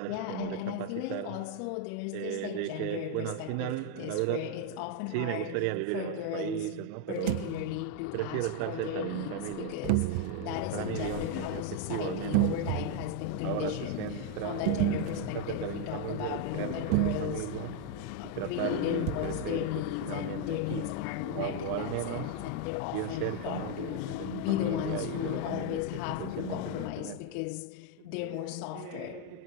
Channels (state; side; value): different; both; correlation 0.01